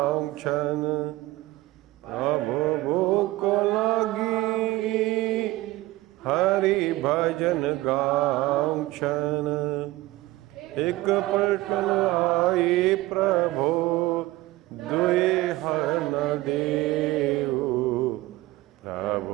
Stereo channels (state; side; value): quieter; left; 18.5 dB